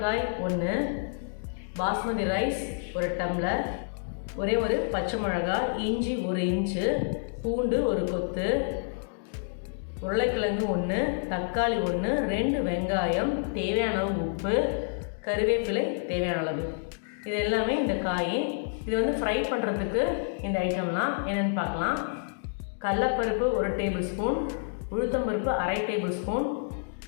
1, பாஸ்மதி ரைஸ் 1 டம்ளர், ஒரே ஒரு பச்சை மிளகாய், இஞ்சி 1 இன்ச்சு, பூண்டு 1 கொத்து, உருளைக்கிழங்கு 1, தக்காளி 1, 2 வெங்காயம், தேவையான அளவு உப்பு, கருவேப்பிலை தேவையான அளவு. இது எல்லாமே இந்த காய். இது வந்து ஃப்ரை பண்ணுறதுக்கு இந்த ஐட்டம்லாம் என்னென்னு பார்க்கலாம். கடலைப்பருப்பு 1 டேபிள் ஸ்பூன், உளுத்தம்பருப்பு 1/2 டேபிள் ஸ்பூன்,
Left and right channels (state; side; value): silent; right; digital silence